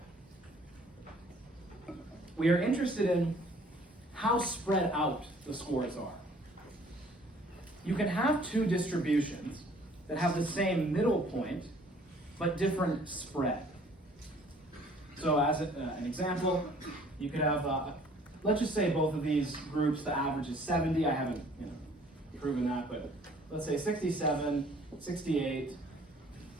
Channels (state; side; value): normal; both; correlation 0.56